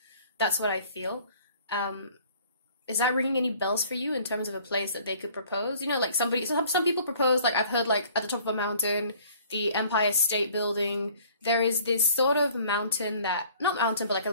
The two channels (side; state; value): both; inverted; correlation -0.54